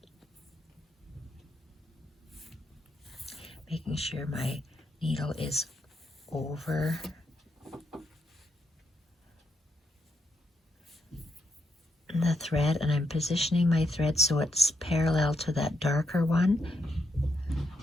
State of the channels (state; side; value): normal; both; correlation 0.80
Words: Making sure my needle is over the thread, and I'm positioning my thread so it's parallel to that darker one.